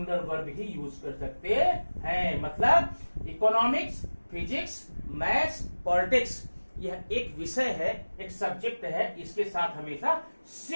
वर्ब ही यूज कर सकते हैं। मतलब इकोनॉमिक्स, फिजिक्स, मैथ्स, पॉलिटिक्स, यह एक विषय है, एक सब्जेक्ट है, इसके साथ हमेशा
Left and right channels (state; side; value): inverted; both; correlation -1.00